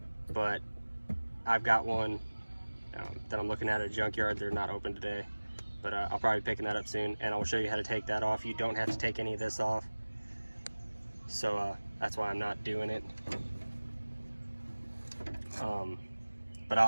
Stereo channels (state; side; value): inverted; both; correlation -1.00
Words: but I've got one that I'm looking at a junkyard. They're not open today, but I'll probably be picking that up soon, and I'll show you how to take that off. You don't have to take any of this off, so that's why I'm not doing it. But